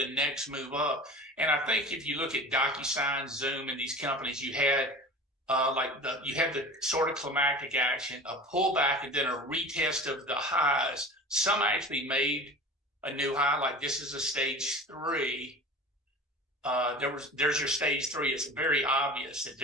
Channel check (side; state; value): both; normal; correlation 0.37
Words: next move up. And I think if you look at DocuSign, Zoom, and these companies, you had the sort of climactic action, a pullback, and then a retest of the highs. Some actually made a new high, like this is a stage 3. There's your stage 3. It's very obvious that